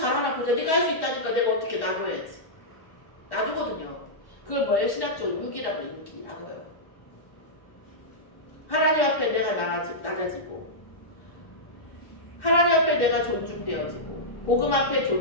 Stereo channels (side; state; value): right; late; 1.1 ms